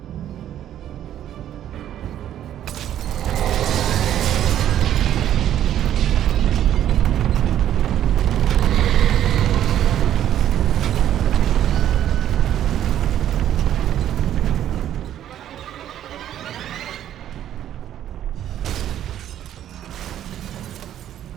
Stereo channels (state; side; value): quieter; left; 11.2 dB